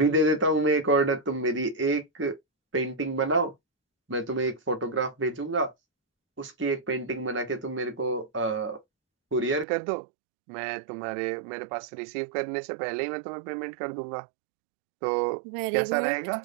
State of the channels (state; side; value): drops out; left; at 9.7 s